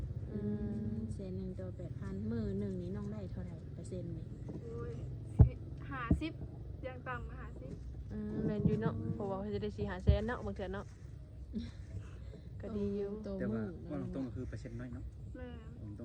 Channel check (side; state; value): both; identical; correlation 1.00